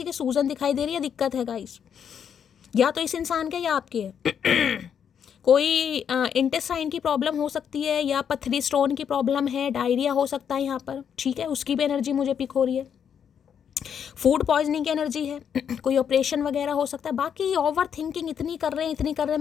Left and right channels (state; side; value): quieter; right; 8.0 dB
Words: की सूजन दिखाई दे रही है, दिक्कत है गाइस, या तो इस इंसान के या आपके है। कोई इंटेस्टाइन की प्रॉब्लम हो सकती है, या पथरी स्टोन की प्रॉब्लम है, डायरिया हो सकता है यहाँ पर, ठीक है, उसकी भी एनर्जी मुझे पिक हो रही है। फूड पॉइजनिंग की एनर्जी है, कोई ऑपरेशन वगैरह हो सकता है। बाकी ओवर थिंकिंग इतनी कर रहे हैं,